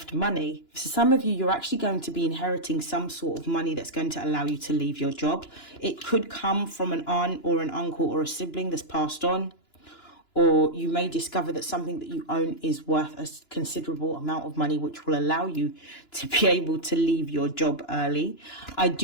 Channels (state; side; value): late; right; 2.9 ms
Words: money. For some of you, you're actually going to be inheriting some sort of money that's going to allow you to leave your job. It could come from an aunt or an uncle or a sibling that's passed on, or you may discover that something that you own is worth a considerable amount of money, which will allow you to be able to leave your job early. I